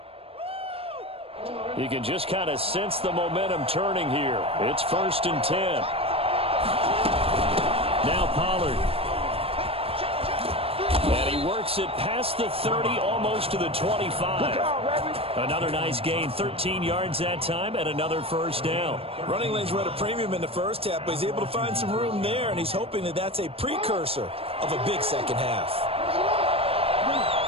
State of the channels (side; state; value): left; late; 0.28 ms